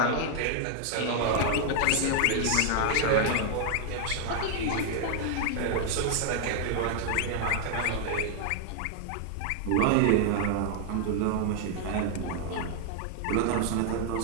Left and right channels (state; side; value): different; both; correlation 0.00